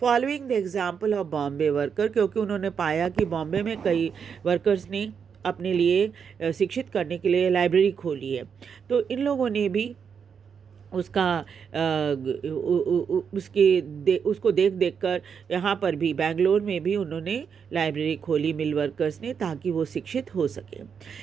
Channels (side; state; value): left; quieter; 6.8 dB